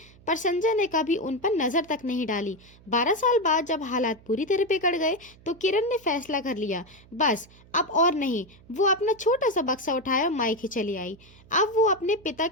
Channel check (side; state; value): right; noise; hum, 25 dB below the sound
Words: पर संजय ने कभी उन पर नजर तक नहीं डाली। 12 साल बाद जब हालात पूरी तरह बिगड़ गए तो किरण ने फैसला कर लिया, बस अब और नहीं। वो अपना छोटा सा बक्सा उठाया और मायके चली आई। अब वो अपने पिता